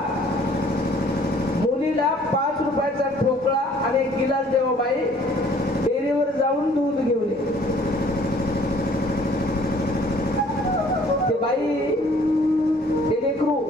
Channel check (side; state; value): both; normal; correlation 0.57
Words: मुलीला 5 रुपयाचा ठोकळा आणि एक गिलास देवा बाई, डेअरीवर जाऊन दूध घेऊन ये. ते बाई, ते लेकरू